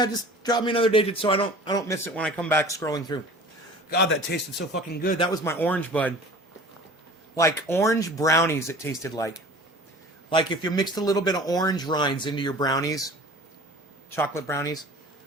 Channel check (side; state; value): both; normal; correlation 0.42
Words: just drop me another digit so I don't miss it when I come back scrolling through. God, that tasted so fucking good. That was my orange bud. Like orange brownies it tasted like. Like if you mixed a little bit of orange rinds into your brownies, chocolate brownies.